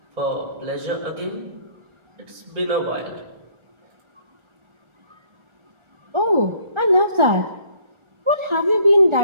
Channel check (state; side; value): late; left; 1.4 ms